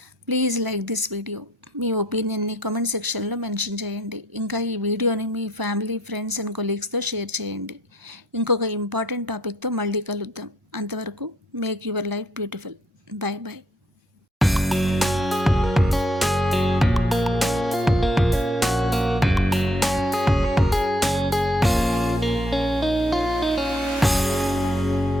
ప్లీజ్ లైక్ దిస్ వీడియో. మీ ఒపీనియన్ని కామెంట్ సెక్షన్లో మెన్షన్ చేయండి. ఇంకా ఈ వీడియోని మీ ఫ్యామిలీ, ఫ్రెండ్స్ అండ్ కొలీగ్స్తో షేర్ చేయండి. ఇంకొక ఇంపార్టెంట్ టాపిక్తో మళ్ళీ కలుద్దాం. అంతవరకు make your life beautiful. Bye bye.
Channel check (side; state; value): both; normal; correlation 0.66